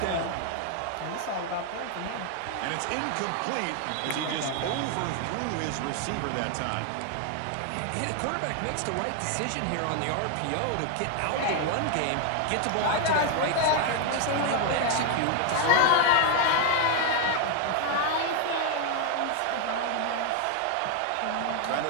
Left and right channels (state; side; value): different; both; correlation 0.00